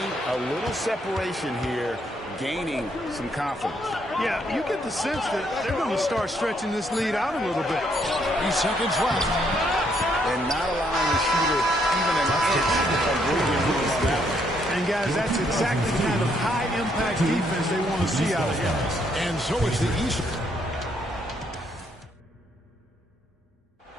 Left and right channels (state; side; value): normal; both; correlation 0.72